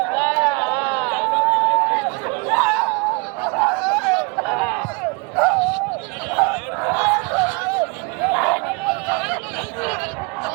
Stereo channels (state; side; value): quieter; left; 30.4 dB